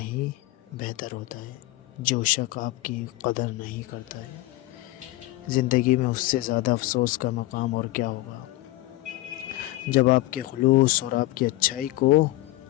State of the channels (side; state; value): right; quieter; 18.1 dB